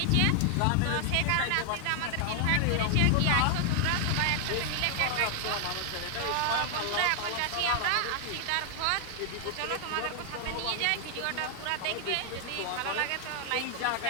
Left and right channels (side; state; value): both; different; correlation 0.00